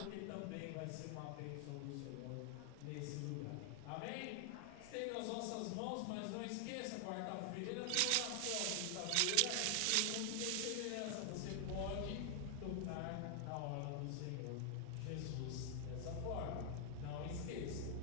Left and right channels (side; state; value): both; different; correlation 0.00